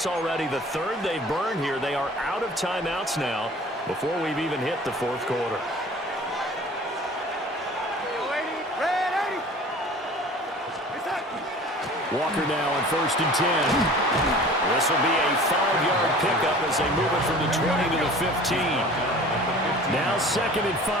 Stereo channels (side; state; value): both; normal; correlation 0.44